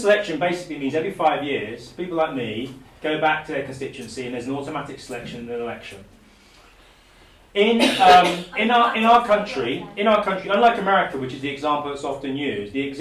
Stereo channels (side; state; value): both; identical; correlation 1.00